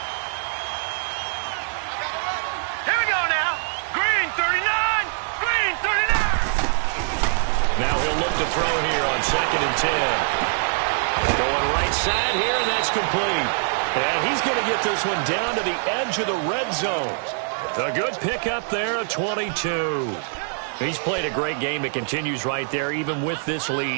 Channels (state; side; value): silent; left; digital silence